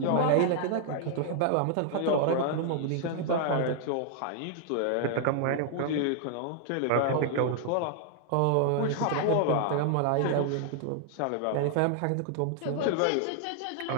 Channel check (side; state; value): both; different; correlation 0.00